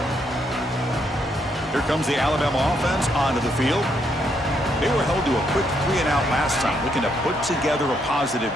Here comes the Alabama offense onto the field. They were held to a quick 3-and-out last time, looking to put together a positive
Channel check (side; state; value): both; normal; correlation 0.75